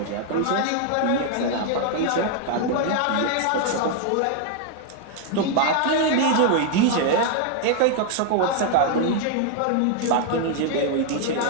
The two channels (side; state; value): both; different; correlation 0.00